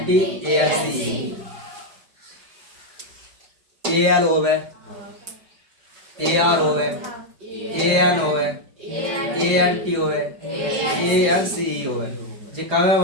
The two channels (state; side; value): late; left; 4.9 ms